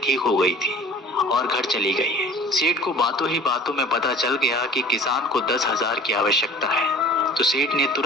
ठीक हो गई थी और घर चली गई है। सेठ को बातों ही बातों में पता चल गया कि किसान को 10,000 की आवश्यकता है। तो सेठ ने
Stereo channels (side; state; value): both; normal; correlation 0.45